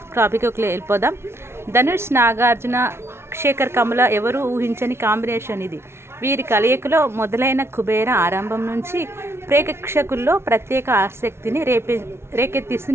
టాపిక్కి వెళ్ళిపోదాం. ధనుష్, నాగార్జున, శేఖర్ కమల ఎవరు ఊహించని కాంబినేషన్ ఇది. వీరి కలయికలో మొదలైన కుబేరా ఆరంభం నుంచి ప్రేక్షకుల్లో ప్రత్యేక ఆసక్తిని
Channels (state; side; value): late; left; 0.12 ms